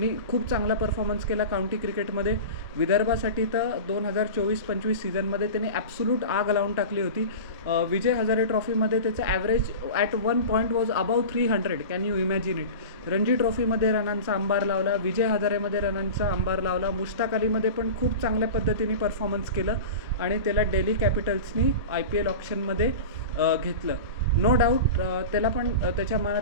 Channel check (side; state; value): both; inverted; correlation -0.31